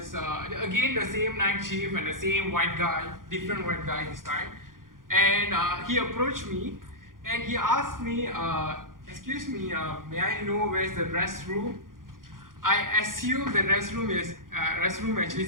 again the same night chief and the same white guy, different white guy this time. And he approached me and he asked me, excuse me, may I know where's the restroom? I assume the restroom actually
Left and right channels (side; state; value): left; late; 0.90 ms